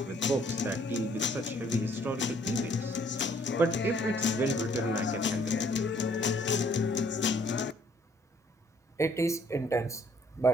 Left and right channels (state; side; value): normal; both; correlation 0.63